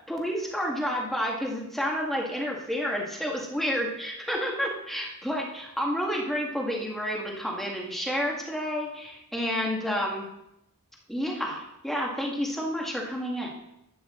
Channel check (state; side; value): normal; both; correlation 0.63